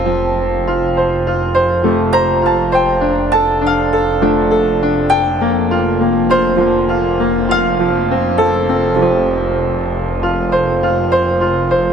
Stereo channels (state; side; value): normal; both; correlation 0.66